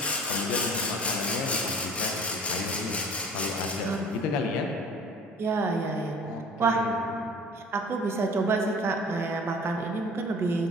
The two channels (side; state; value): both; normal; correlation 0.46